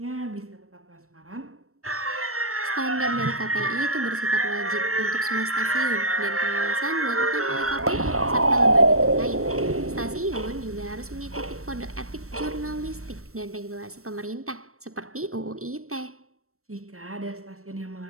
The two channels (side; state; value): left; late; 0.63 ms